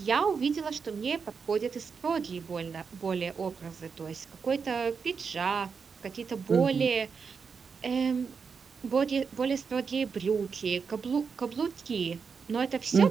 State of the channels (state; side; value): quieter; left; 5.7 dB